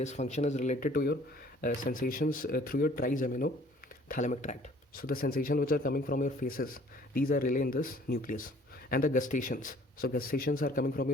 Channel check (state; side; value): normal; both; correlation 0.55